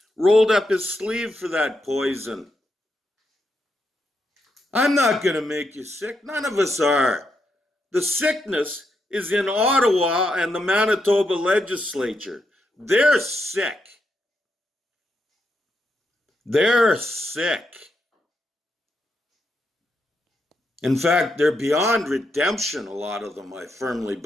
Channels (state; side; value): normal; both; correlation 0.82